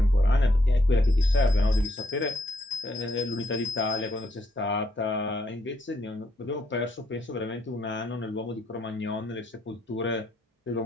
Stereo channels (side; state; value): both; normal; correlation 0.75